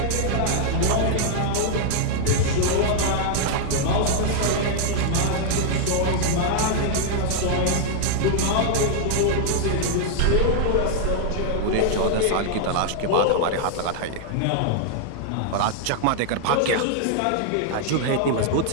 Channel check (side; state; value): both; different; correlation 0.00